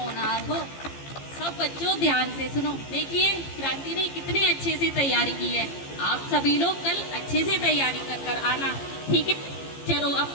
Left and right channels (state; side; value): late; right; 15 ms